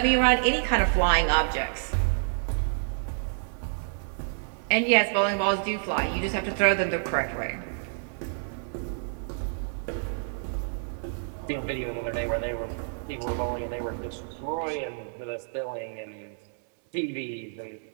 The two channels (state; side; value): silent; left; digital silence